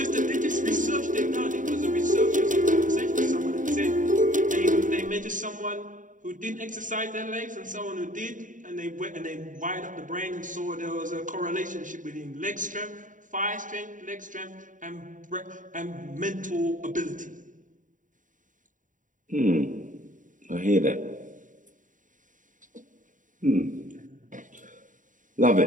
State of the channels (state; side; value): late; left; 0.38 ms